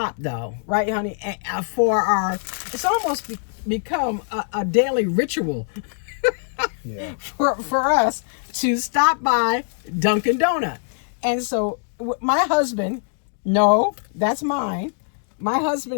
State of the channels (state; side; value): silent; right; 64 dB below the other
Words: though, right, honey? For it's almost become a daily ritual for us to stop by Dunkin' Donut. And so my husband, no, that's mine. My